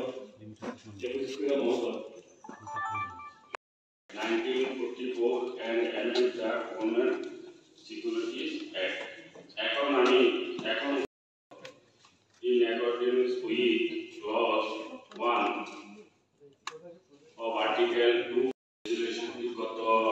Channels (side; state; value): both; identical; correlation 1.00